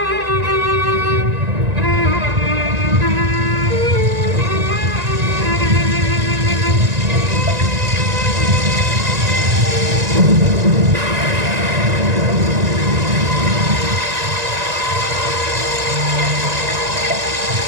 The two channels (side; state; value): left; late; 1.9 ms